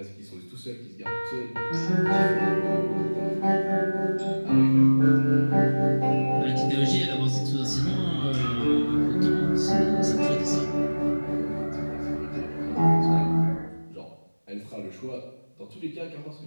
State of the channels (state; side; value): inverted; both; correlation -1.00